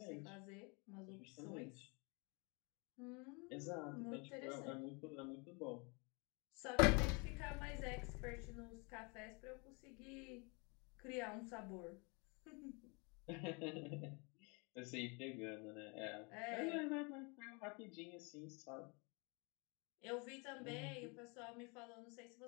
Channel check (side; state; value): right; quieter; 31.4 dB